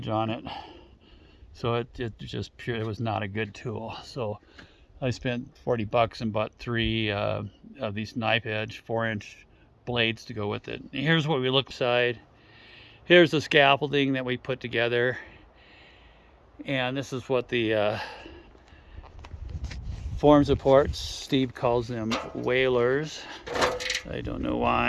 on it, so it just pure, it was not a good tool. So I spent $40 and bought 3 of these knife edge 4-inch blades to go with it. And here's what we look inside. Here's the scaffolding that we put together, and this is what the form supports. Steve calls them whalers. I don't know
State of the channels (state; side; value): identical; both; correlation 1.00